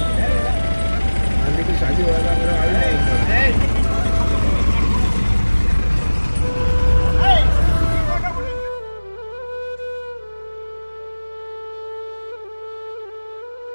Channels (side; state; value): both; inverted; correlation -1.00